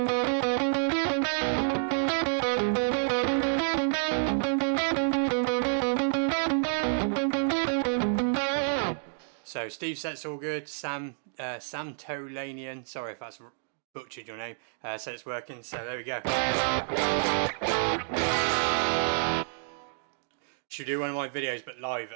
So Steve said it's all good. Sam Tolanian, sorry if that's butchered your name, said it's working. So there we go. Should do one of my videos but live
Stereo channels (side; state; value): left; silent; digital silence